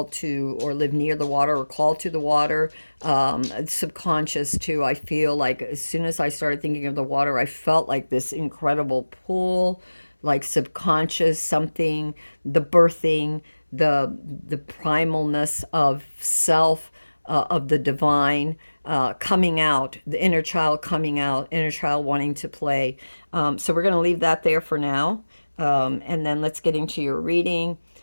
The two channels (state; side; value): inverted; both; correlation -1.00